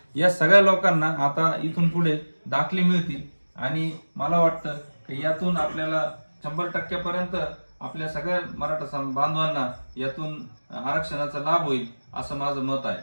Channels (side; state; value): both; inverted; correlation -1.00